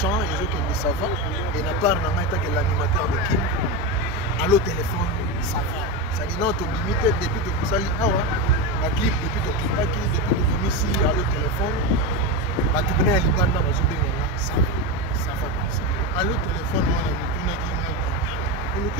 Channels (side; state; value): both; normal; correlation 0.15